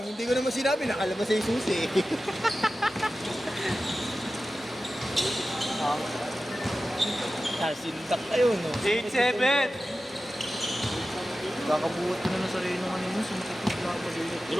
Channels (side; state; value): both; normal; correlation 0.94